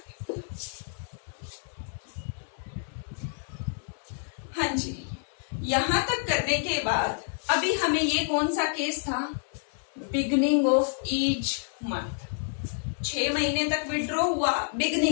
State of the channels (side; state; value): right; silent; 59 dB below the other